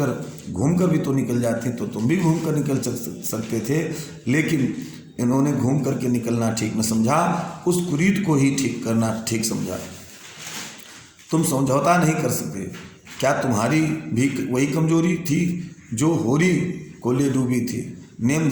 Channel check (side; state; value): both; identical; correlation 1.00